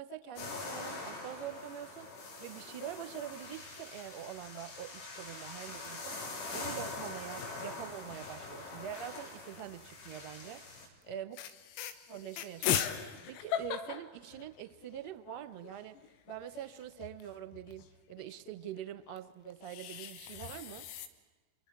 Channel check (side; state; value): right; late; 21 ms